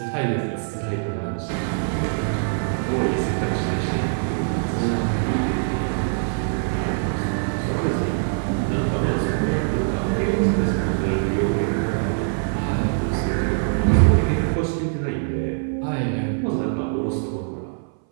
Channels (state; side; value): silent; left; 60 dB below the other